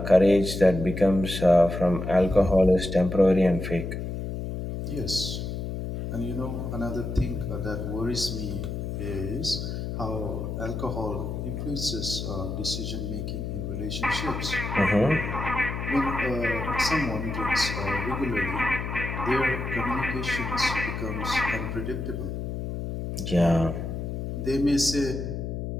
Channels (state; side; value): noise; left; hum, 5 dB below the sound